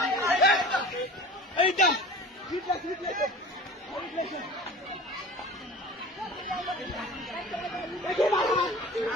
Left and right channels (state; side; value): normal; both; correlation 0.39